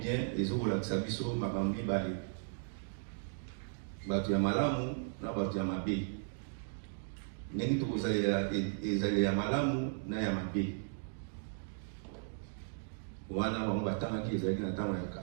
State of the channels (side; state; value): left; silent; digital silence